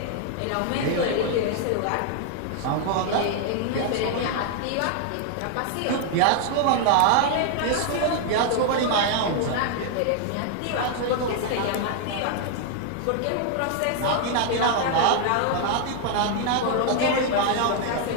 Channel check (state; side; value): different; both; correlation 0.00